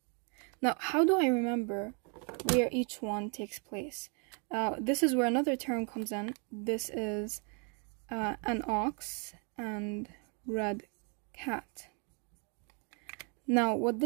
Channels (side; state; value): left; quieter; 37.2 dB